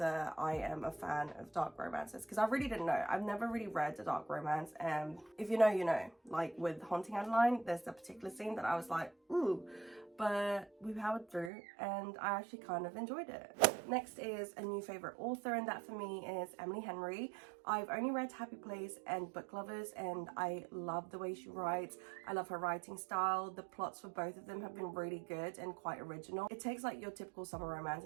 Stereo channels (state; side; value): drops out; left; at 11.5 s